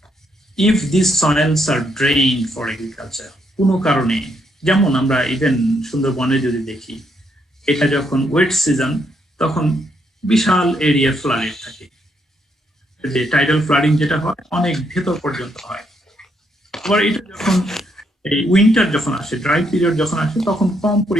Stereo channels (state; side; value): normal; both; correlation 0.75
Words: if these soils are drained for agriculture, কোনো কারণে, যেমন আমরা ইভেন সুন্দরবনে যদি দেখি, এটা যখন ওয়েট সিজন তখন বিশাল এরিয়া ফ্লাডেড থাকে, যে টাইডাল ফ্লাডিং যেটা হয় অনেক ভেতর পর্যন্ত হয়। আবার এটা যখন এই উইন্টার যখন আসে, ড্রাই পিরিয়ড যখন আসে, তখন কম